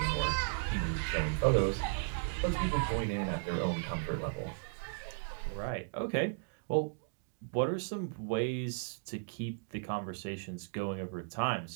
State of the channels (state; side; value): silent; left; digital silence